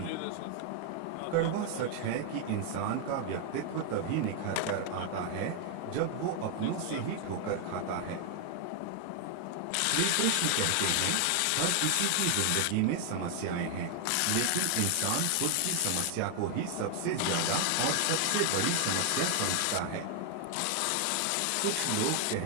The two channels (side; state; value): both; different; correlation 0.00